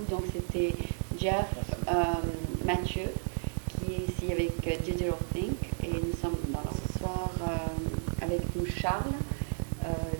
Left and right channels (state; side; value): silent; left; 56 dB below the other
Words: Donc c'était Jeff Mathieu qui est ici avec Digital Think et nous sommes ce soir avec nous Charles